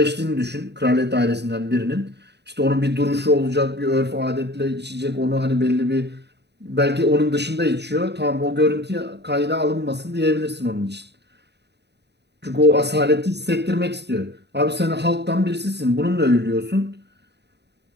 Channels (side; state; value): left; late; 0.49 ms